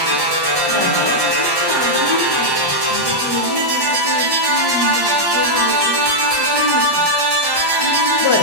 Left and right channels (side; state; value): left; late; 1.1 ms